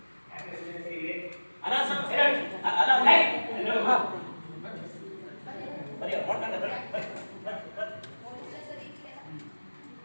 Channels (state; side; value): inverted; both; correlation -1.00